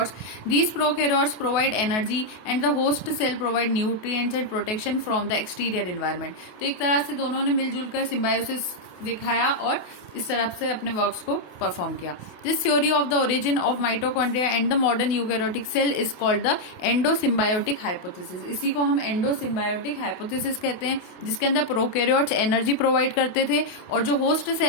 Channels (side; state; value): right; late; 28 ms